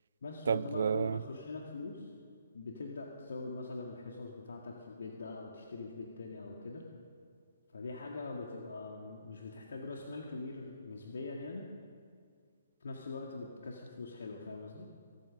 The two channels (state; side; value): inverted; both; correlation -0.75